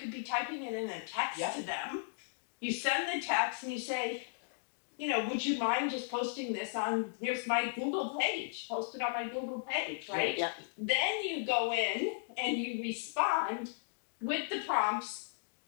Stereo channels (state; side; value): silent; right; digital silence